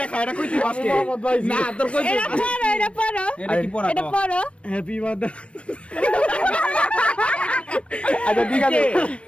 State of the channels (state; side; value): late; right; 0.061 ms